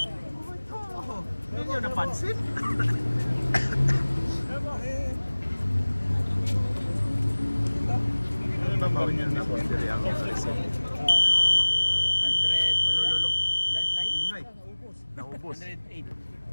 Hindi nyo napansin? Ano ba ba niya? Napundiri ang Alison. 100. Malululong. 109? Ingay. Naubos. 108.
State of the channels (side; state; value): both; inverted; correlation -1.00